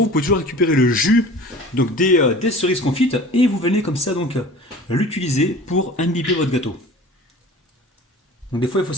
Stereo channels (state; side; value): normal; both; correlation 0.42